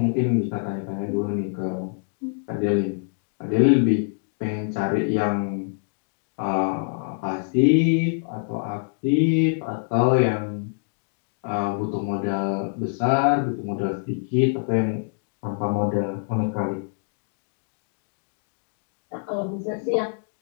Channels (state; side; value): silent; right; digital silence